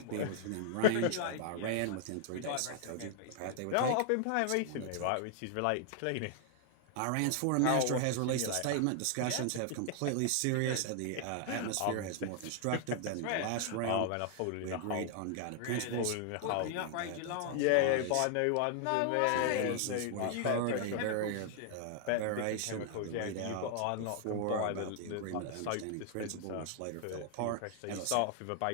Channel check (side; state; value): both; different; correlation 0.00